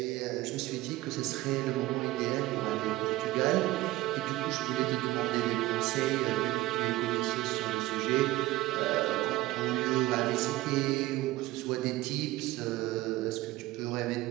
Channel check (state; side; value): quieter; left; 17.7 dB